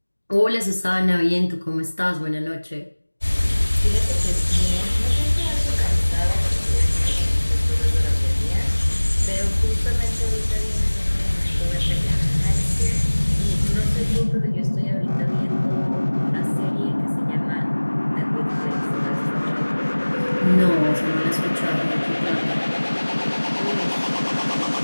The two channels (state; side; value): inverted; both; correlation -1.00